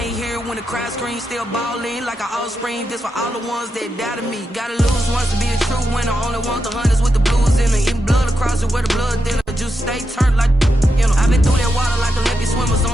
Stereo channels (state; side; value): normal; both; correlation 0.86